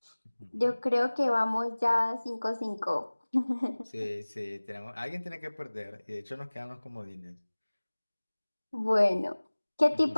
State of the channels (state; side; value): inverted; both; correlation -1.00